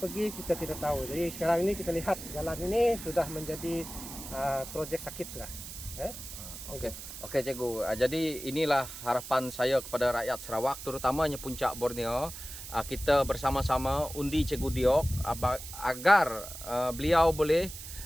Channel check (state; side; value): noise; right; hiss, 11 dB below the sound